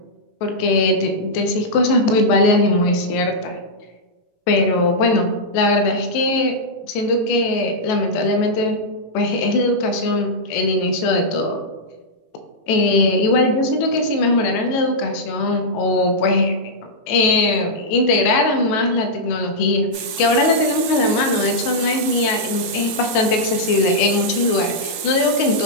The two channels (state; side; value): late; right; 18 ms